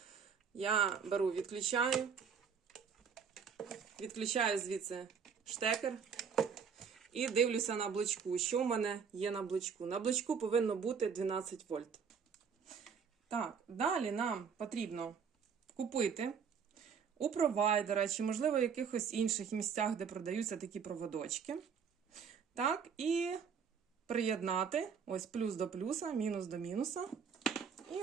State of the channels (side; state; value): left; quieter; 6.5 dB